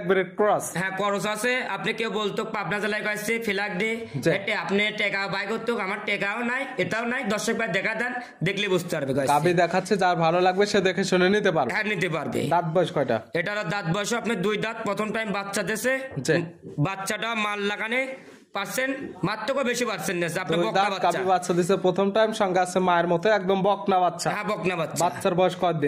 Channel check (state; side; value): identical; both; correlation 1.00